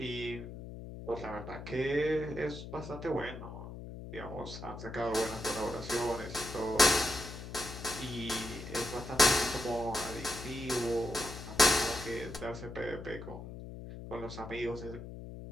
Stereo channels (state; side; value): noise; left; hum, 10 dB below the sound